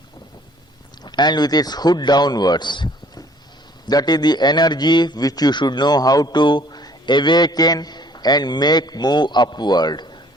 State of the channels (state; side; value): normal; both; correlation 0.57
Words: and with its hood downwards. That is the energy which you should know how to awaken and make move upward